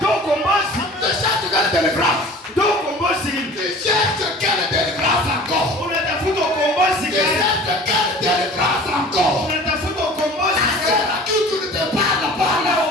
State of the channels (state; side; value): normal; both; correlation 0.43